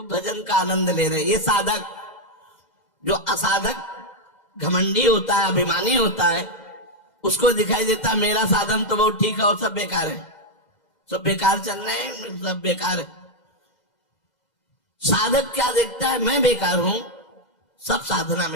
भजन का आनंद ले रहे। ये साधक, जो असाधक घमंडी होता है, अभिमानी होता है, उसको दिखाई देता है मेरा साधन तो बहुत ठीक है और सब बेकार है, सब बेकार चल रहे हैं, सब बेकार है। साधक क्या देखता है, मैं बेकार हूं, सब साधना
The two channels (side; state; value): right; late; 2.0 ms